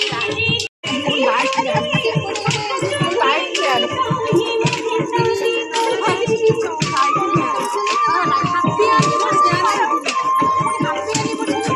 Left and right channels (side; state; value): both; identical; correlation 1.00